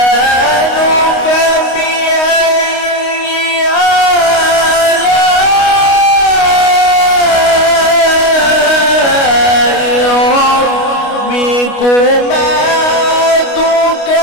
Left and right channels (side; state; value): right; late; 29 ms